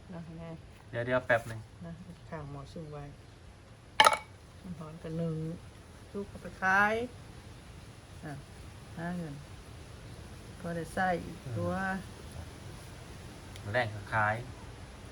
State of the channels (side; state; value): both; identical; correlation 1.00